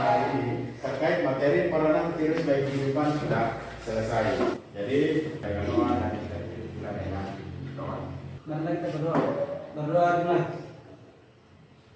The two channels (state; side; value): identical; both; correlation 1.00